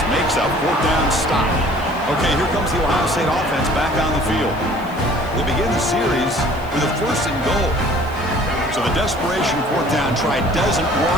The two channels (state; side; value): noise; left; hiss, 24 dB below the sound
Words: makes a 4th down stop. Okay, here comes the Ohio State offense back on the field. They begin the series with a 1st and goal. So the desperation 4th down try doesn't